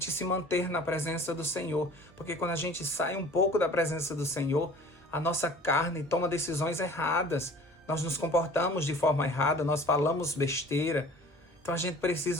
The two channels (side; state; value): both; normal; correlation 0.46